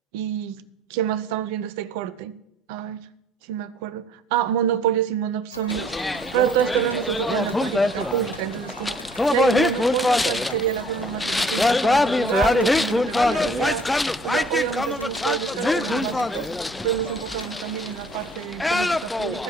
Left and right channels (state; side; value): normal; both; correlation 0.55